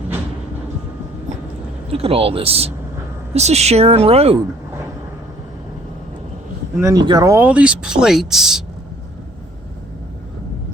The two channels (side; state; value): both; normal; correlation 0.58